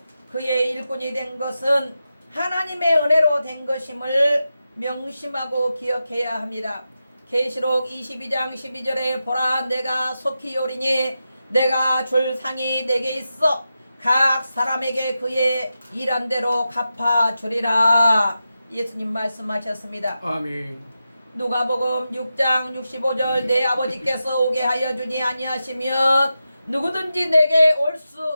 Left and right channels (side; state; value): both; inverted; correlation -0.90